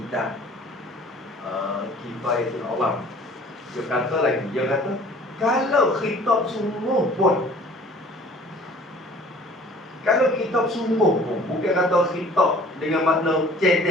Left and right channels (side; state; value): both; normal; correlation 0.51